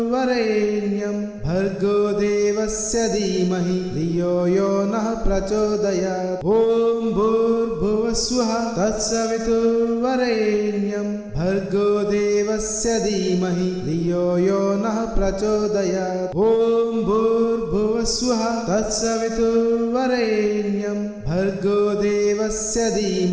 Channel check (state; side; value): identical; both; correlation 1.00